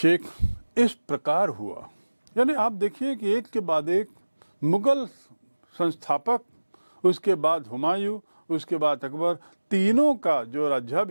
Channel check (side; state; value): both; inverted; correlation -1.00